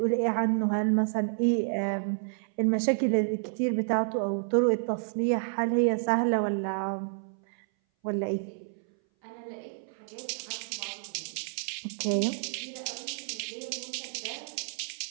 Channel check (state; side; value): silent; left; 58 dB below the other